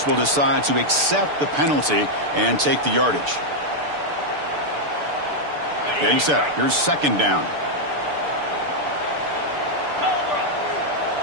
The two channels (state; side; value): late; left; 6.8 ms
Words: will decide to accept the penalty and take the yardage. Getting set. Here's second down.